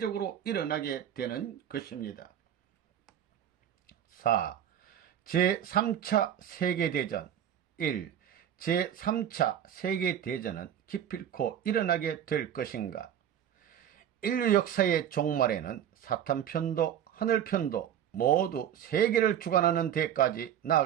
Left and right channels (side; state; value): left; quieter; 10.0 dB